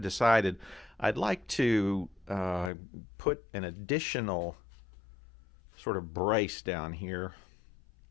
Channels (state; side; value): drops out; right; at 2.7 s